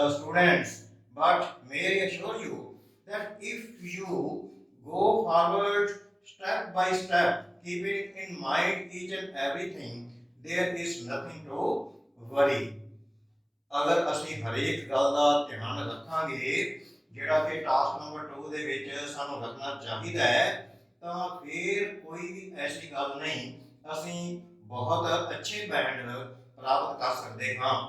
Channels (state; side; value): identical; both; correlation 1.00